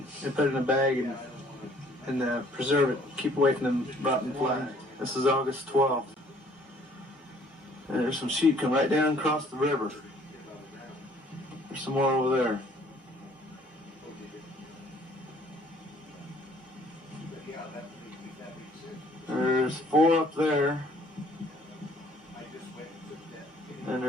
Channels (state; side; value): normal; both; correlation 0.59